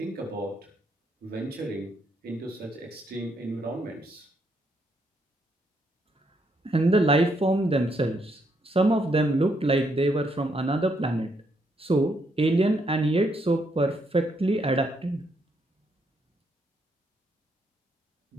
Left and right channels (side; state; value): both; normal; correlation 0.75